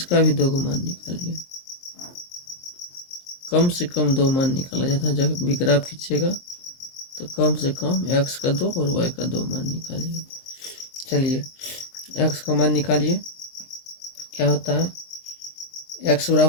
भी 2 का मान निकालिए। कम से कम 2 मान निकाला जाता है जब भी ग्राफ खींचेगा, तो कम से कम x का 2 और y का 2 मान निकालिए। चलिए x का मान निकालिए। क्या होता है, x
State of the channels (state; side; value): late; right; 23 ms